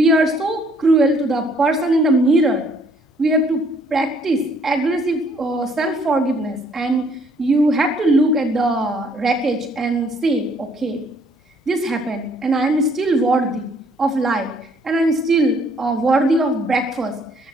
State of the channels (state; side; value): normal; both; correlation 0.64